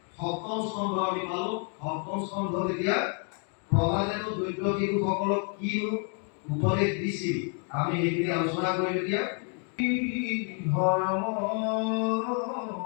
সপ্তম স্কন্ধ আমি পালো সপ্তম স্কন্ধ এতিয়া প্ৰহ্লাদেৱ দৈত্য শিশুসকলক কি উপদেশ দিছিল আমি এইখিনি আলোচনা কৰিম এতিয়া ধৰ্ম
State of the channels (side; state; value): right; quieter; 39.2 dB